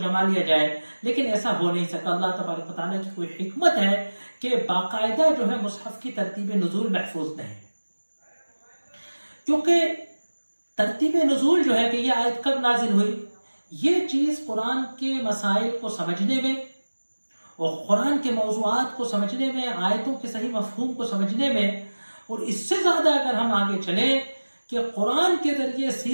لیا جائے، لیکن ایسا ہو نہیں سکا۔ اللہ تبارک و تعالیٰ کی کوئی حکمت ہے کہ باقاعدہ جو ہے مصحف کی ترتیب نزول محفوظ نہیں، کیونکہ ترتیب نزول جو ہے کہ یہ آیت کب نازل ہوئی، یہ چیز قرآن کے مسائل کو سمجھنے میں اور قرآن کے موضوعات کو سمجھنے میں، آیتوں کے صحیح مفہوم کو سمجھنے میں، اور اس سے زیادہ اگر ہم آگے چلیں کہ قرآن کے ذریعے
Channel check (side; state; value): both; inverted; correlation -1.00